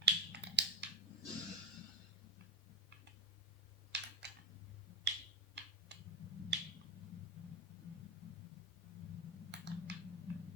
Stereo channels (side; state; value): both; normal; correlation 0.12